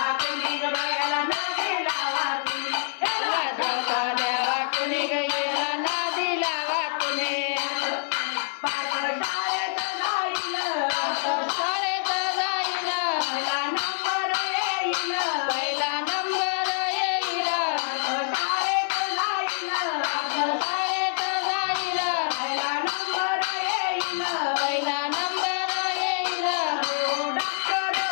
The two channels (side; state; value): right; silent; 56 dB below the other